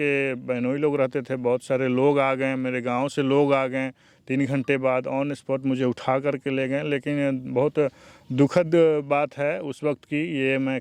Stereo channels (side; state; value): both; identical; correlation 1.00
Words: बहनोई लोग रहते थे, बहुत सारे लोग आ गए, मेरे गांव से लोग आ गए। 3 घंटे बाद ऑन स्पॉट मुझे उठा करके ले गए। लेकिन बहुत दुखद बात है उस वक्त की, ये मैं